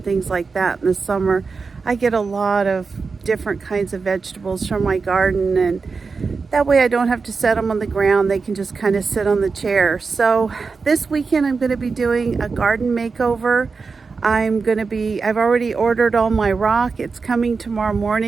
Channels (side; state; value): left; quieter; 4.7 dB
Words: things like that in the summer. I get a lot of different kinds of vegetables from my garden, and that way I don't have to set them on the ground. They can just kind of sit on the chair. So this weekend I'm going to be doing a garden makeover. I've already ordered all my rock. It's coming tomorrow